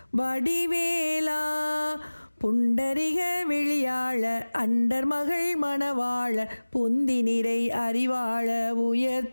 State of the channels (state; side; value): inverted; both; correlation -1.00